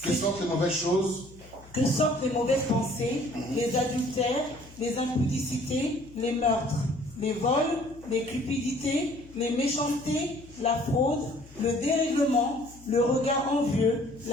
Que sortent les mauvaises choses? Que sortent les mauvaises pensées, les adultères, les impudicités, les meurtres, les vols, les cupidités, les méchancetés, la fraude, le dérèglement, le regard envieux,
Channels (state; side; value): noise; left; hum, 22 dB below the sound